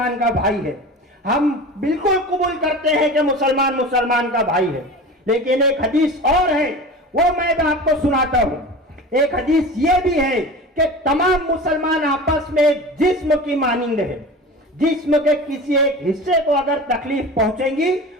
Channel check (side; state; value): both; normal; correlation 0.34